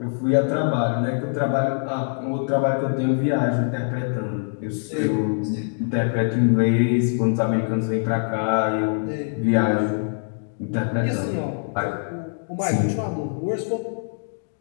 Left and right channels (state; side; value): silent; right; digital silence